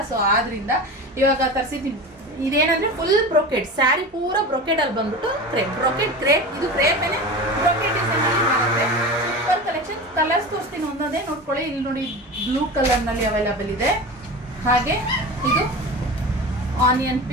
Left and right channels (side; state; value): both; normal; correlation 0.30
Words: ಸೊ ಆದ್ರಿಂದ ಇವಾಗ ತರಿಸಿದೀವಿ. ಇದೇನಂದ್ರೆ ಫುಲ್ ಬ್ರೊಕೆಡ್ ಸ್ಯಾರಿ, ಪೂರ ಬ್ರೊಕೆಡ್ ಅಲ್ಲಿ ಬಂದ್ಬಿಟ್ಟು ಕ್ರೇಪ್, ಬ್ರೊಕೆಡ್ ಕ್ರೇಪ್. ಇದು ಕ್ರೇಪ್ ಏನೇ ಬ್ರೊಕೆಡ್ ಡಿಸೈನ್ ಅಲ್ಲಿ ಬರುತ್ತೆ. Super collection. ಕಲರ್ಸ್ ತೋರಿಸ್ತೀನಿ ಒಂದೊಂದೇ ನೋಡ್ಕೊಳ್ಳಿ. ಇಲ್ಲಿ ನೋಡಿ, ಬ್ಲೂ ಕಲರ್ ನಲ್ಲಿ ಅವೈಲಬಲ್ ಇದೆ. ಹಾಗೆ ಇದು ಆನಿಯನ್